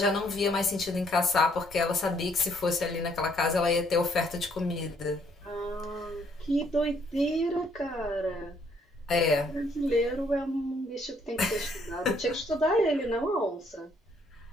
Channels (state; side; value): normal; both; correlation 0.67